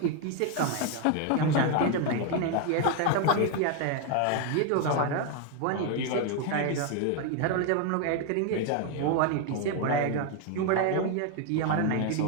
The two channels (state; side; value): different; both; correlation 0.01